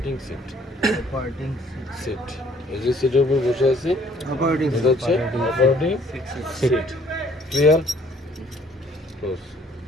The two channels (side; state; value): both; normal; correlation 0.60